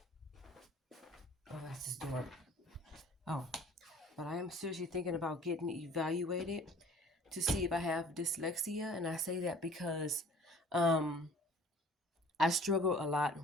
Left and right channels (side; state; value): both; normal; correlation 0.50